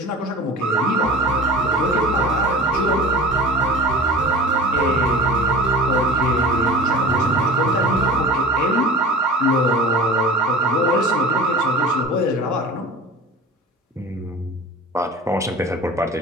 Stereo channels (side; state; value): both; normal; correlation 0.38